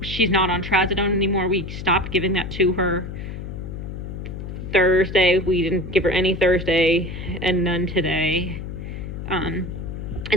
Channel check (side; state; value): left; noise; hum, 8 dB below the sound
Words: She's not on trazodone anymore. We stopped giving that to her Thursday. We didn't give her any Thursday and none today. And